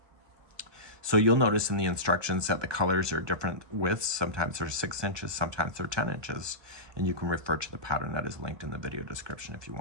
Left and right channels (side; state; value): left; late; 1.2 ms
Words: So you'll notice in the instructions that the colors are different widths. Sometimes they're 6 inches, sometimes they're 10 inches, and you can refer to the pattern that is linked in the video description if you